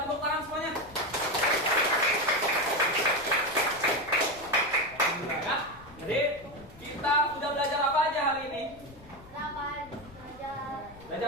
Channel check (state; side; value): noise; left; rumble, 21 dB below the sound